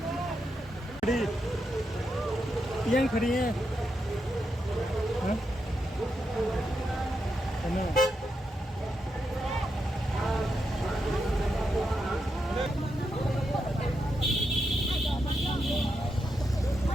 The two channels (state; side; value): normal; both; correlation 0.84